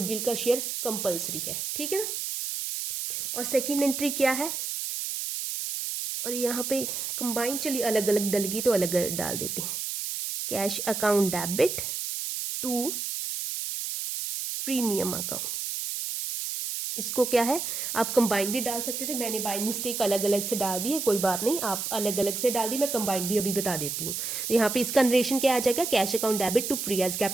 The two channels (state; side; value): noise; right; hiss, 3 dB below the sound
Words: का शेयर कंपलसरी है। ठीक है ना, और सेकंड एंट्री क्या है, और यहाँ पे कंबाइन, चलिए अलग अलग डलगी तो अलग अलग डाल देते हैं। Cash account debit to premium account, इसको क्या है आप कंबाइन भी डाल सकते थे, मैंने बाय मिस्टेक अलग अलग से डाल दी है, कोई बात नहीं, आप अलग अलग से डाल दी, मैं कंबाइन भी अभी बता देती हूँ। तो यहाँ पे इसका नरेशन क्या आ जाएगा, cash account debit to Priya's